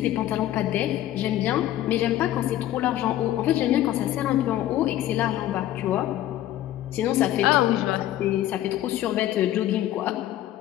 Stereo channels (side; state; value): right; quieter; 13.4 dB